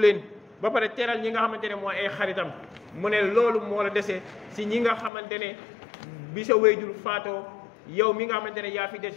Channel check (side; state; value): right; drops out; at 5.1 s